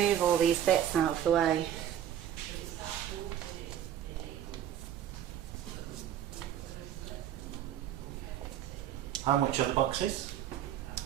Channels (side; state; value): left; quieter; 10.5 dB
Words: all these bits out of the way. How much are the boxes?